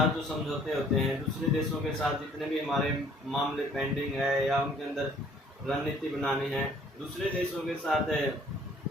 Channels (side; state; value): both; normal; correlation 0.58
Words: जो समझौते होते हैं, दूसरे देशों के साथ जितने भी हमारे मामले पेंडिंग है या उनके अंदर रणनीति बनानी है, दूसरे देशों के साथ